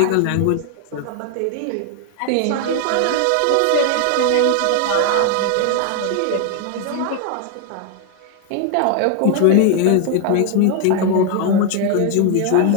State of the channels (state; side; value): different; both; correlation 0.00